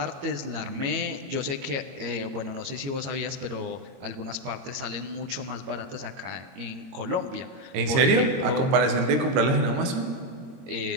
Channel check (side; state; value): left; late; 22 ms